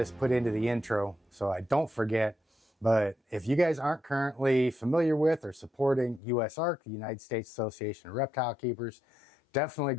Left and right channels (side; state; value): right; drops out; at 6.2 s